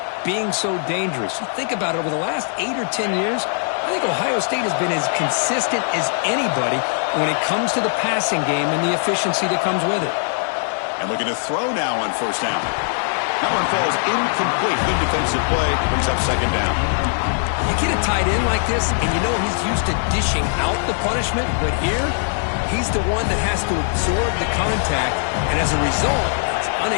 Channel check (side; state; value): right; silent; digital silence